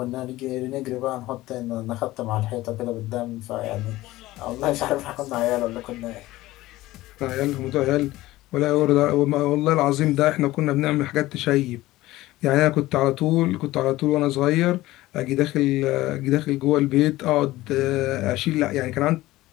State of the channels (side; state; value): right; quieter; 17.4 dB